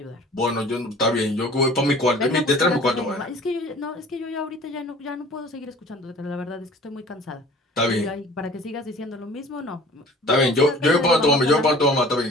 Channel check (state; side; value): normal; both; correlation 0.47